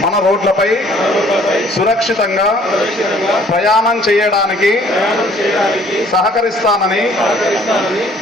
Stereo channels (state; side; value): normal; both; correlation 0.58